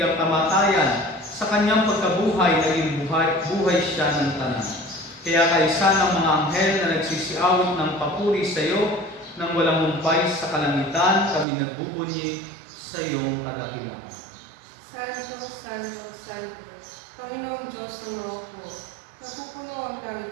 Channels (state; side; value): drops out; left; at 11.5 s